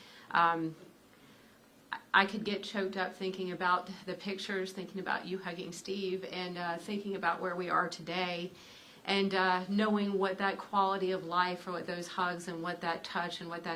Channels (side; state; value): both; identical; correlation 1.00